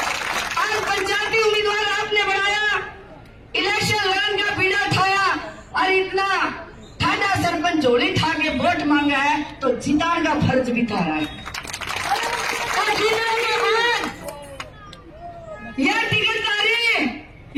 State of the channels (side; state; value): both; identical; correlation 1.00